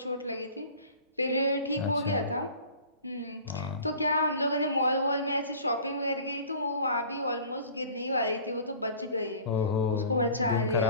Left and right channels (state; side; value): inverted; both; correlation -0.45